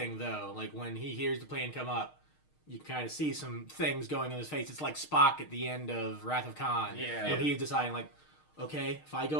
though. Like when he hears the plan come up, you kind of see some things going on his face. It's like Spock at the end of Wrath of Khan. Yeah. When he's deciding like, okay, if I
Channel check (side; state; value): right; late; 6.5 ms